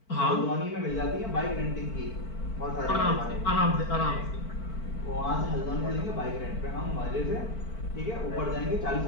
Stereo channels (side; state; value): right; late; 4.5 ms